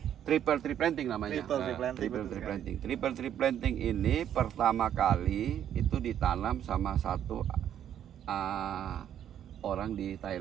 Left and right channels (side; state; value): left; quieter; 10.1 dB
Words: triple tree planting namanya. Triple tree planting, Triple betul tree sekali. planting. Triple tree planting ini pertama kali itu ditanam sama satu orang di